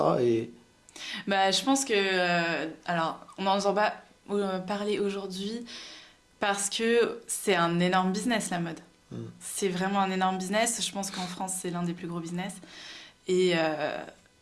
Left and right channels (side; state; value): both; identical; correlation 1.00